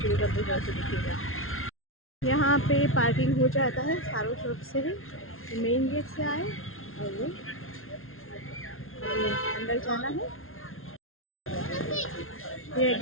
को अंत तक जरूर से देखिएगा। यहाँ पे पार्किंग हो जाता है सारों शॉप से ही, मेन गेट से आए और ये अंदर जाना है। ये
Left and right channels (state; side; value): late; right; 0.61 ms